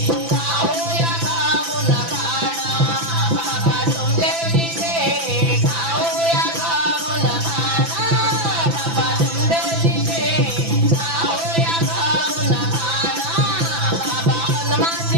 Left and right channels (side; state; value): left; late; 6.0 ms